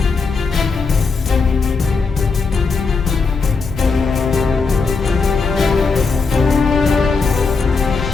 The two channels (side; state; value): right; quieter; 4.6 dB